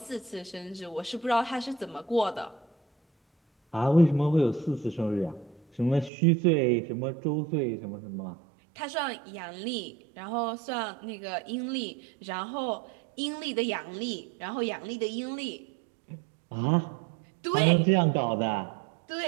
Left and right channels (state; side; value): drops out; left; at 6.1 s